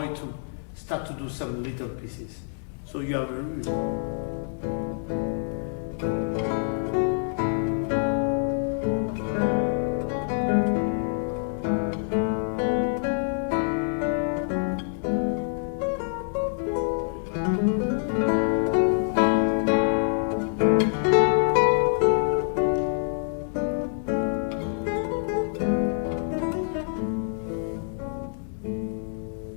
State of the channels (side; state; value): right; silent; digital silence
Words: to start to do some little pieces. So you have